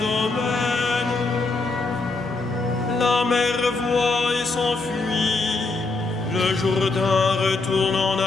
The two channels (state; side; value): quieter; right; 3.6 dB